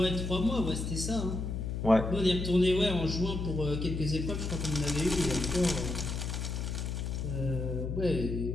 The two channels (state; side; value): noise; left; hum, 3 dB below the sound